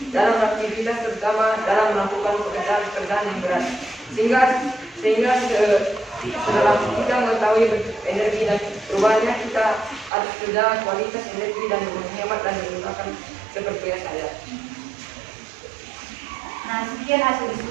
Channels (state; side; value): drops out; left; at 10.1 s